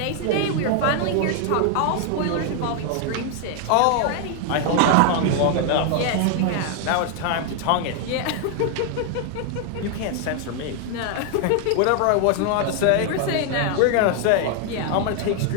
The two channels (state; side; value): different; both; correlation 0.00